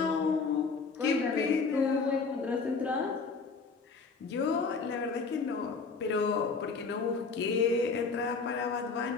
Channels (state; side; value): quieter; right; 4.7 dB